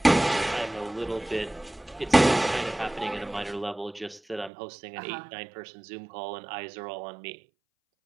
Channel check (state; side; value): drops out; left; at 4.5 s